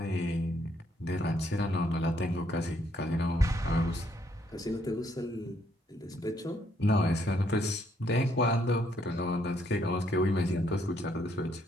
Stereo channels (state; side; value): normal; both; correlation 0.71